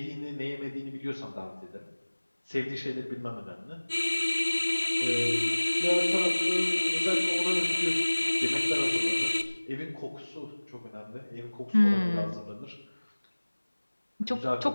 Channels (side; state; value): both; inverted; correlation -1.00